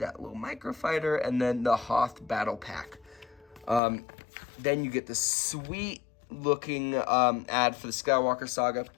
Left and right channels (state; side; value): drops out; right; at 3.8 s